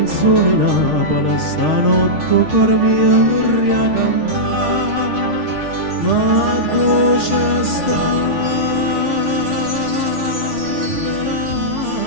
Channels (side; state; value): left; late; 6.4 ms